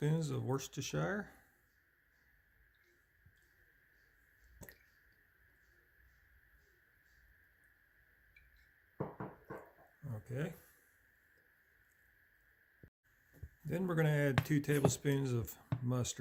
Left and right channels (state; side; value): identical; both; correlation 1.00